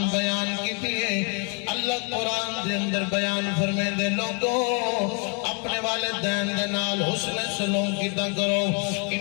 بیان کی تھی اللہ قرآن دے اندر بیان فرمے دے لوگوں اپنے والدین دے نال حسن سلوک کیتا کرو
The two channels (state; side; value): quieter; right; 37.3 dB